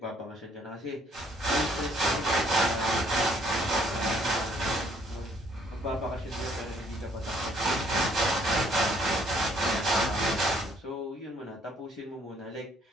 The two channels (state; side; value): normal; both; correlation 0.64